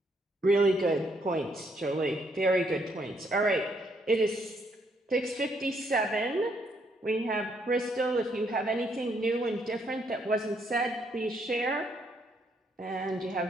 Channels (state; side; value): normal; both; correlation 0.72